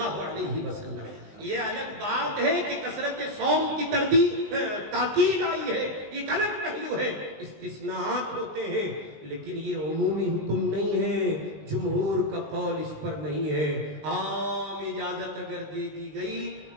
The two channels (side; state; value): left; late; 19 ms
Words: علیہ وسلم۔ یہ الگ بات ہے کہ کثرت صوم کی تاکید آئی ہے، ایک الگ پہلو ہے، استثناءات ہوتے ہیں، لیکن یہ عمومی حکم نہیں ہے، جمہور کا قول اس پر نہیں ہے۔ عام اجازت اگر دے دی گئی